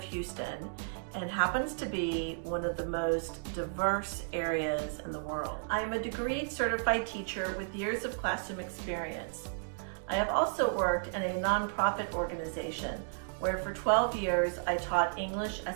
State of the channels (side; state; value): left; silent; digital silence